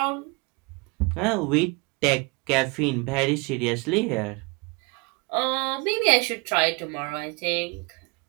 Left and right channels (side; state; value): left; quieter; 28.5 dB